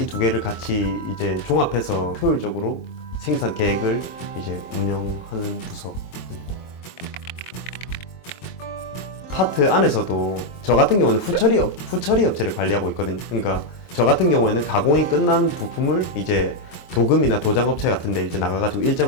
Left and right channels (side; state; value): right; late; 23 ms